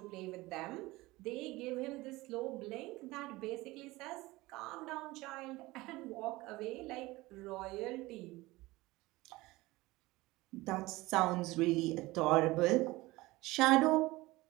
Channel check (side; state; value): left; quieter; 20.2 dB